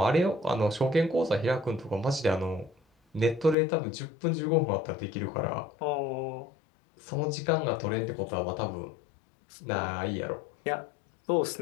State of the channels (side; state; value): right; drops out; at 3.6 s